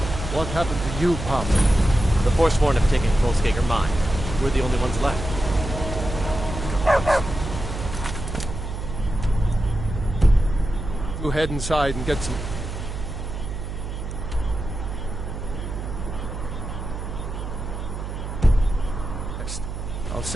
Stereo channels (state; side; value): noise; right; hum, 7 dB below the sound